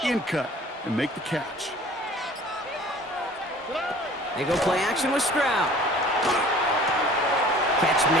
in cut and make the catch. They go play action with Stroud. Catch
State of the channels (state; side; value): normal; both; correlation 0.48